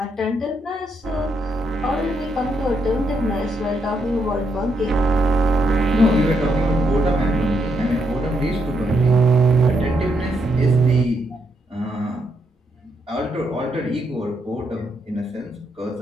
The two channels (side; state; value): both; normal; correlation 0.78